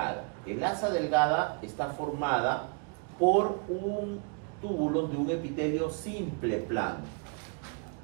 El asa delgada está formada por un túbulo de un epitelio simple plano.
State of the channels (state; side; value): quieter; left; 34.7 dB